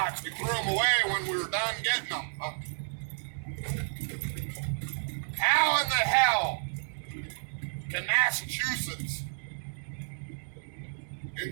We threw them away when we were done getting them. How in the hell can Massachusetts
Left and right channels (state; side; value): silent; left; digital silence